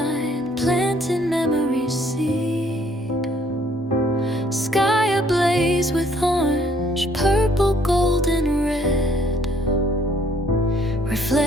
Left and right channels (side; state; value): both; normal; correlation 0.63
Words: planting memories seed. Sky ablaze with orange, purple, gold, and red,